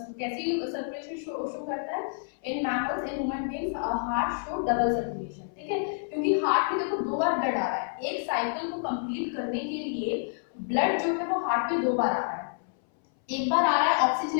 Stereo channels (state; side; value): silent; right; 58 dB below the other